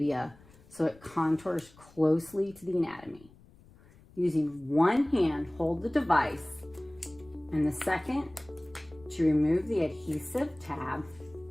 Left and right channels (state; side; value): noise; left; rumble, 25 dB below the sound